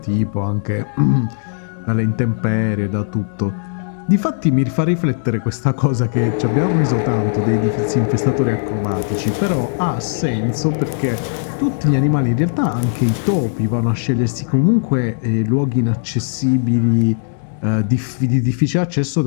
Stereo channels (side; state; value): right; silent; digital silence